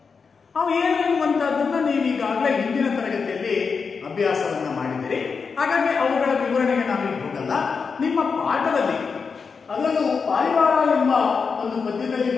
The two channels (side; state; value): right; quieter; 5.3 dB